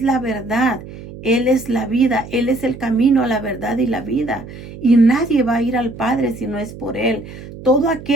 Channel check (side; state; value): right; noise; hum, 14 dB below the sound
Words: la verdad, Él es la vida, Él es el camino a la verdad y la vida. Y nadie va a ir al Padre si no es por Él. Todo